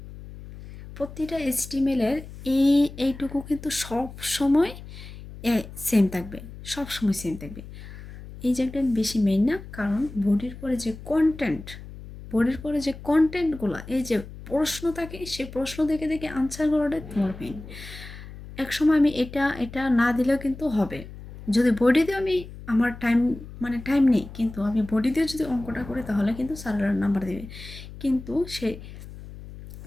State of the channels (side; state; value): left; noise; hum, 14 dB below the sound